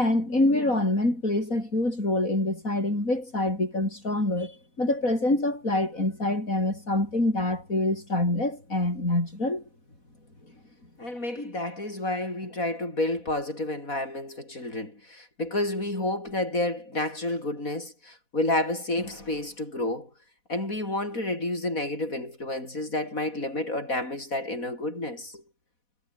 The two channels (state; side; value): late; right; 4.1 ms